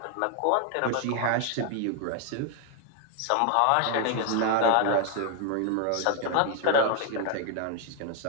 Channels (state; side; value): different; both; correlation 0.00